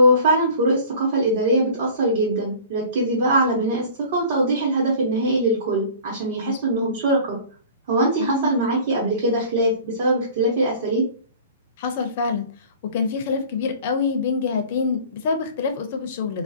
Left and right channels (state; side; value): inverted; both; correlation -0.44